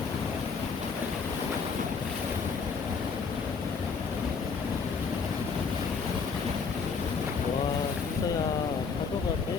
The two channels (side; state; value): right; quieter; 5.3 dB